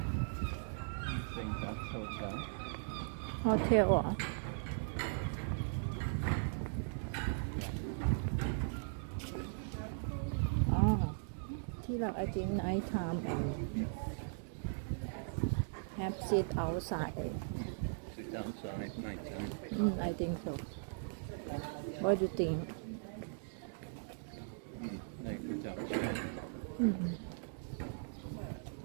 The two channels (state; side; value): silent; left; digital silence